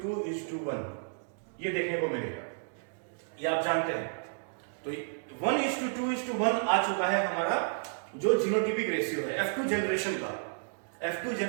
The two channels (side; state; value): left; silent; digital silence